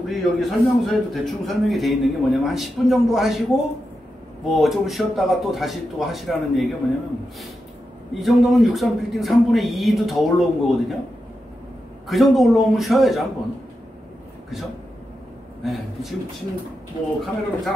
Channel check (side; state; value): both; normal; correlation 0.88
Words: 여기 설명서에도 대충 설명이 돼 있는 게 뭐냐면, 한 10분 정도 하시고 뭐 좀 쉬었다가 또 다시 또 하시라는 얘기가 뭐냐면, 이 정도면 63빌딩 3분의 2도 더 올라온 거거든요. 그 정도 올라오면 쉬어야죠, 한번. 그죠? 네. 지금 뭐 카메라로 잘